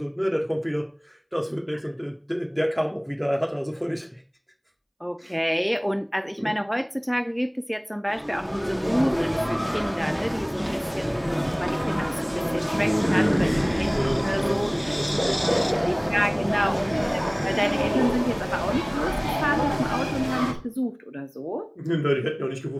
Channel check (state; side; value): identical; both; correlation 1.00